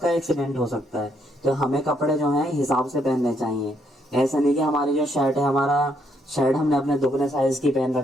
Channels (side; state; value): both; normal; correlation 0.73